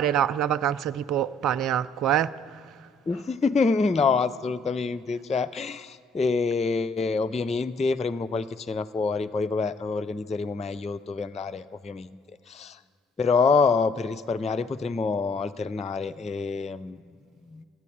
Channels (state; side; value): normal; both; correlation 0.63